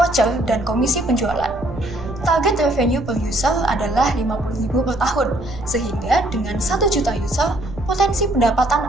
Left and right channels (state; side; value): noise; right; rumble, 12 dB below the sound